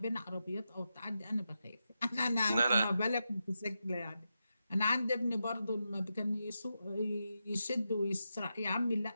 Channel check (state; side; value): inverted; both; correlation -0.88